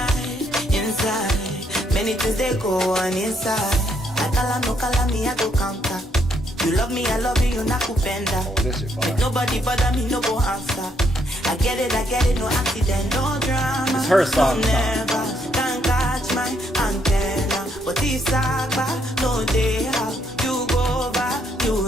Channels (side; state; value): both; normal; correlation 0.73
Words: Inside, many things they go on inside. I call me, I go counter. You love me, I love you, you're not kupenda. Make nobody bother me, no go answer. I get it, no accident, no drama. It's her song. Never can catch my antenna. But it's Saba, no day how you go over,